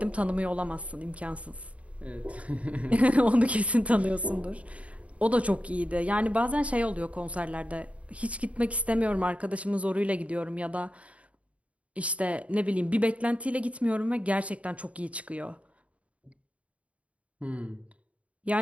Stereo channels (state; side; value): late; left; 0.065 ms